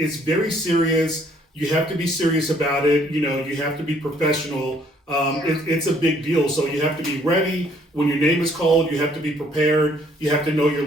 very serious. You have to be serious about it. You have to be professional. yeah, It's a big deal. So you have to be ready when your name is called. You have to be prepared. You have to know your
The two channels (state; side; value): normal; both; correlation 0.63